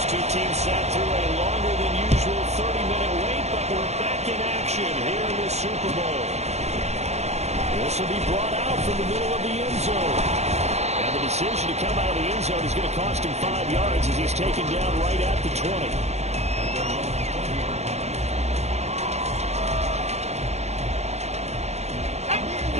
Teams sat through a longer than usual 30-minute wait, but we're back in action here in the Super Bowl. This will be brought out from the middle of the end zone. And the decision to come out of the end zone is going to cost him 5 yards as he's taken down right at the 20.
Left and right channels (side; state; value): left; late; 0.32 ms